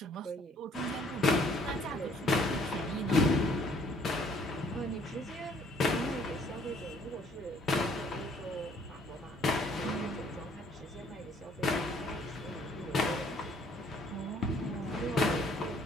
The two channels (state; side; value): normal; both; correlation 0.61